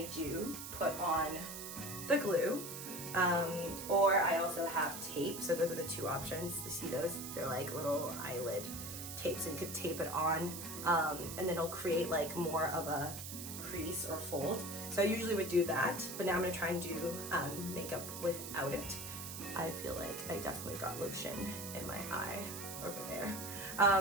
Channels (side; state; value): right; noise; hiss, 8 dB below the sound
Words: do put on the glue, or I also have tape. So those are the two options. You see those? They're like little eyelid tapes, so you could tape it on, and then it'll create like more of a crease or fold. So I usually would do that, but now I'm gonna try and do makeup without it. I feel like I definitely got lotion in my eye over there.